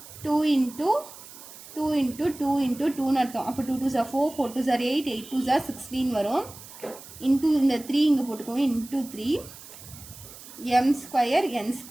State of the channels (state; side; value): noise; right; hiss, 17 dB below the sound